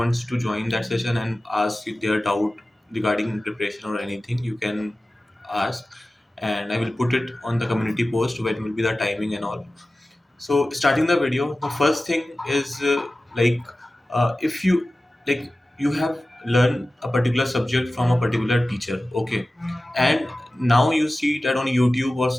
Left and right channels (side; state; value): both; normal; correlation 0.96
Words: to join that session and ask if their doubt regarding preparation or anything, you can ask, and I will put it on the community post when will be the timing and all. So starting the video, the first thing is if you like you have learned a particular subject from a particular teacher, okay, and now you see that on YouTube or